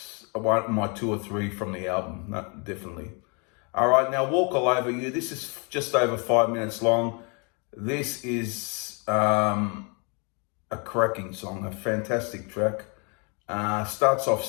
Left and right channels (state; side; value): quieter; right; 34.4 dB